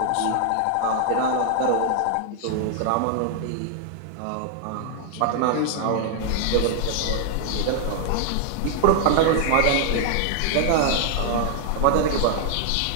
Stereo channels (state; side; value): different; both; correlation 0.00